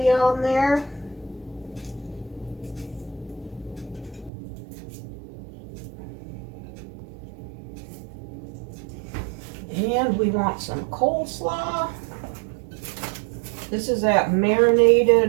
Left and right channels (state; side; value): drops out; left; at 4.3 s